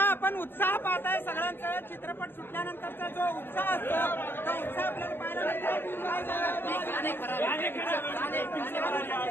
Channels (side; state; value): right; late; 0.10 ms